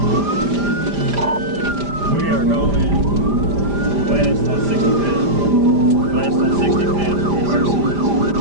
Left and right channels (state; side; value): late; left; 5.0 ms